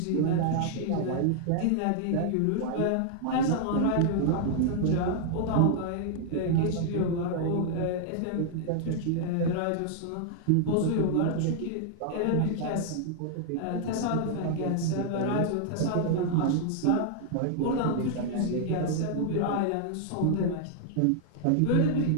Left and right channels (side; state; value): both; different; correlation 0.00